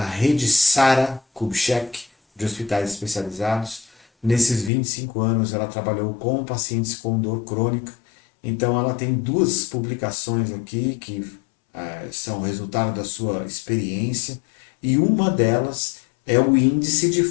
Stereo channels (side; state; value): right; drops out; at 4.7 s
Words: Sara Kubitschek de hospitais especializados. Nesses 25 anos, ela trabalhou com pacientes com dor crônica. Então, ela tem duas publicações aqui que são resultado da sua experiência, e uma delas é o índice de